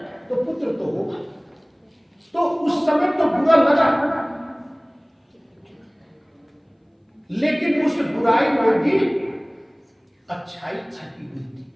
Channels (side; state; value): both; identical; correlation 1.00